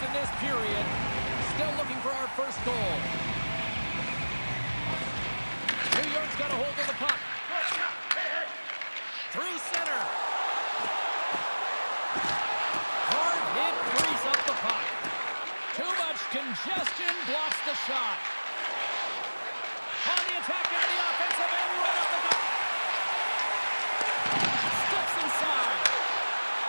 in this period. Still looking for our first goal. New York's got a hold of the puck. Through center. Hard hit, frees up the puck. Too much congestion, blocks the shot. On the attack into the offensive end, right up the gut. Steps inside.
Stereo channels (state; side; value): inverted; both; correlation -1.00